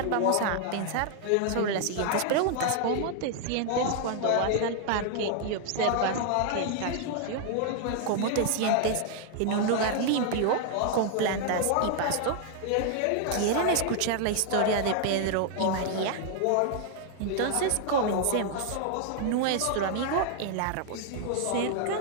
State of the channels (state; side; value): different; both; correlation 0.00